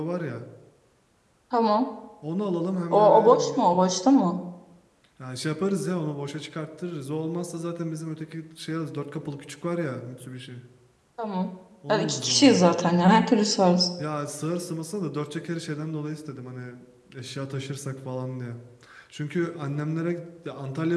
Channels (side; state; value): both; identical; correlation 1.00